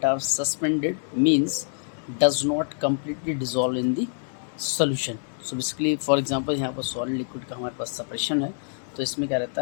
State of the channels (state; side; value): silent; right; digital silence